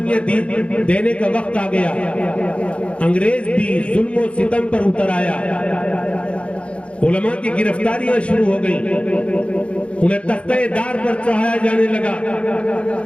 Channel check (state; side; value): late; right; 0.060 ms